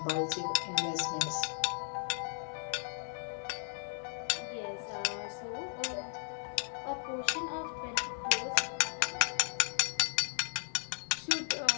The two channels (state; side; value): silent; right; 54 dB below the other